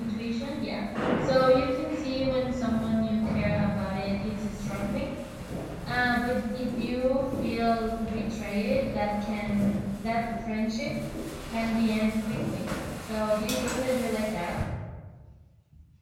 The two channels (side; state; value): both; identical; correlation 1.00